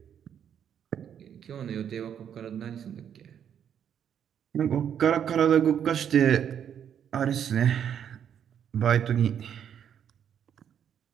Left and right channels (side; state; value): left; quieter; 8.8 dB